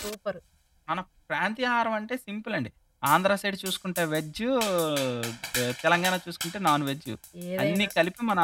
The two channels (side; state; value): both; identical; correlation 1.00